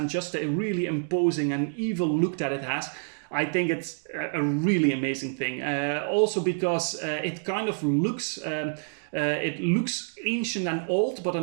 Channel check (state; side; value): silent; left; digital silence